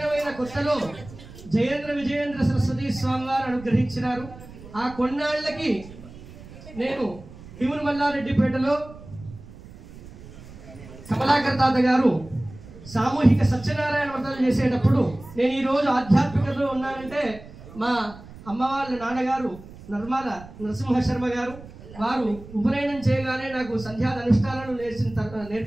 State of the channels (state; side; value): noise; right; rumble, 17 dB below the sound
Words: కొత్తలో జయేంద్ర విజయేంద్ర సరస్వతి స్వామి వారు అనుగ్రహించినారు. ఆ కొన్నాళ్లకి నేను భీముని మల్లారెడ్డిపేటలో కమలాకర్ తాత గారు సామూహిక సత్యనారాయణ వ్రతాలు చేసేటప్పుడు నేను ఈరోజు ఆధ్యాత్మికతలో ఉన్నానంటే మా అమ్మ వాళ్ళ నాన్నగారు నర్మాల నరసింహ శర్మ గారు వారు ఉపనయనం చేయగానే నాకు సంధ్యాద అనుష్ఠానాలు